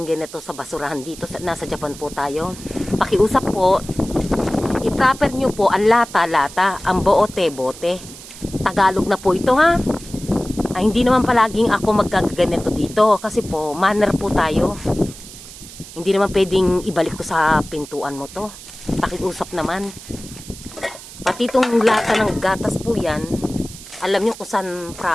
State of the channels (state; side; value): noise; right; hiss, 16 dB below the sound